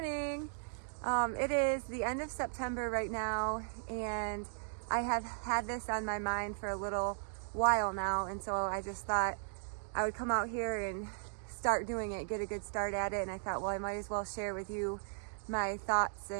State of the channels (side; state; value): left; silent; digital silence